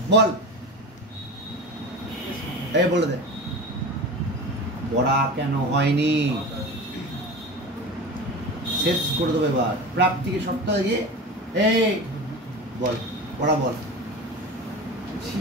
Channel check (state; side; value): normal; both; correlation 0.30